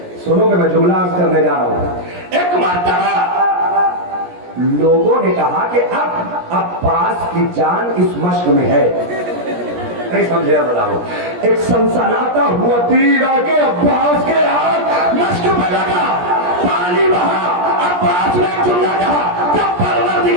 سنو کہ میں جملہ عرض کرنے جا رہا ہوں. ایک مرتبہ لوگوں نے کہا کہ اب عباس کی جان اس مشق میں ہے. نہیں سمجھے بتاؤ. ایک سنسناتا ہوا تیر آ کے عباس کے ہاتھ مشق میں لگا, پانی بہا. عباس نے جملہ کہا کہ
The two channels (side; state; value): left; late; 17 ms